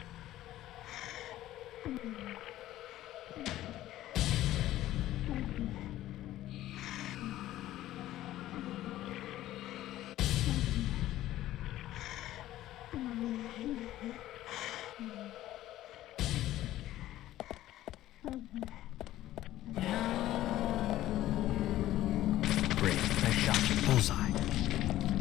Great. Nice shot. Bullseye.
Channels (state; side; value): quieter; right; 14.4 dB